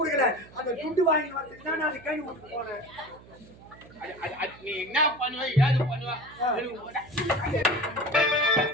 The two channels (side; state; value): right; noise; hum, 22 dB below the sound